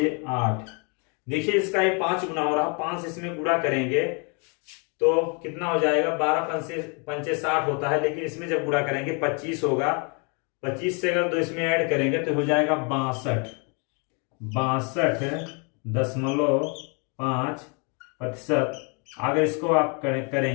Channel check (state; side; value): quieter; right; 34.9 dB